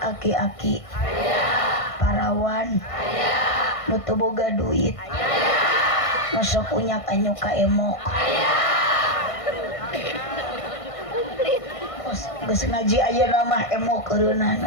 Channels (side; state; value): right; late; 1.5 ms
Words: Aki-aki? Parawan? Nutu boga duit? Masuk punya kanyu ka emok. Geus ngaji ayeuna mah emok